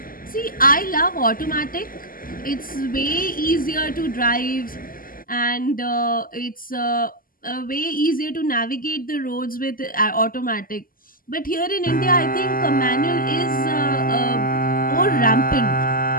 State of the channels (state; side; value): late; right; 0.41 ms